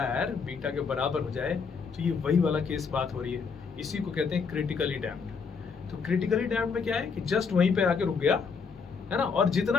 बीटा के बराबर हो जाए, तो ये वही वाला केस बात हो रही है, इसी को कहते हैं क्रिटिकली डैम्प्ड। तो क्रिटिकली डैम्प्ड में क्या है कि जस्ट वहीं पे आके रुक गया, है ना, और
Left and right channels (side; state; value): right; quieter; 5.4 dB